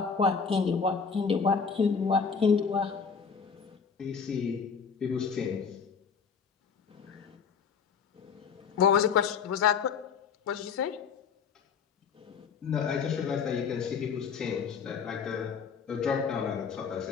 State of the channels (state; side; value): quieter; right; 6.1 dB